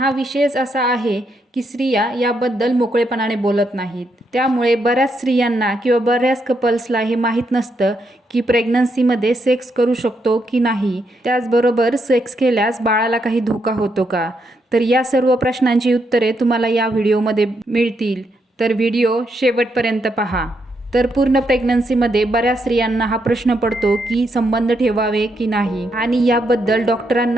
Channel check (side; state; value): both; normal; correlation 0.79